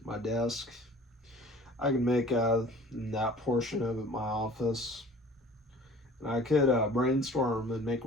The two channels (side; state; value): both; normal; correlation 0.47